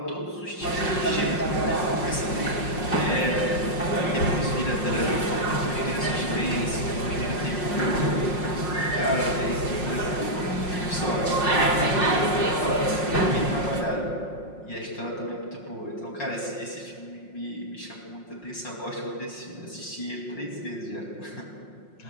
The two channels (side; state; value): right; late; 5.5 ms